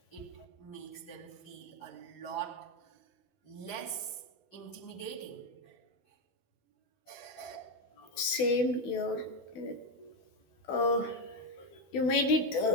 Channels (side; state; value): right; late; 12 ms